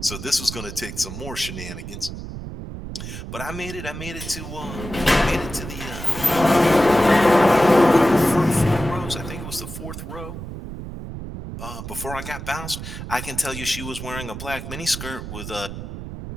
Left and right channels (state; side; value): noise; right; rumble, 9 dB below the sound